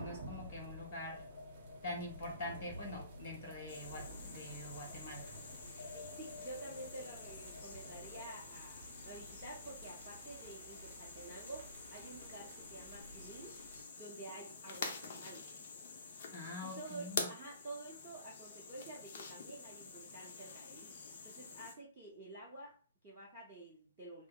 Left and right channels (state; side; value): inverted; both; correlation -0.50